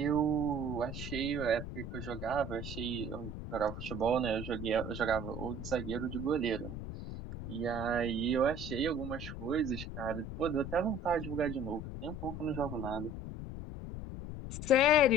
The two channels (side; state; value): left; noise; rumble, 7 dB below the sound